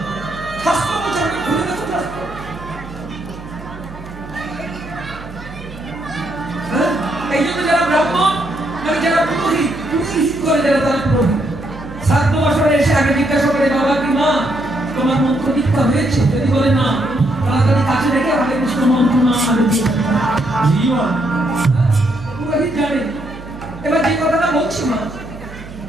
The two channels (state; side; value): noise; right; hum, 15 dB below the sound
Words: শাস্ত্র বলছে, আপনি খুলে দেখুন শাস্ত্র। এই জন্য যারা ব্রাহ্মণ, মানে যারা পুরোহিত করে, যারা তারা পুরোহিত, শ্রাদ্ধ বাসনে এসে আগে জিজ্ঞাসা করে, বাবা কি মা তোমার মন্ত্র দীক্ষা হয়েছে? যদি বলে না, তাড়াতাড়ি কাছে রেখে হরে কৃষ্ণ মন্ত্র না আগে দিয়ে পুরোহিত জানে। এবার যে কথাটা বলছি, মা